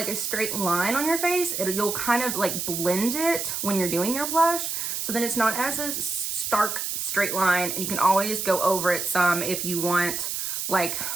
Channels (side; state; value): right; noise; hiss, 3 dB below the sound